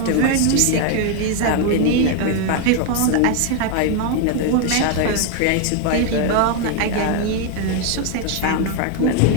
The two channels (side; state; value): both; different; correlation 0.01